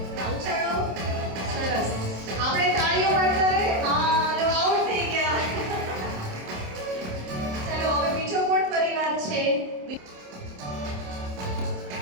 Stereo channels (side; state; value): left; late; 27 ms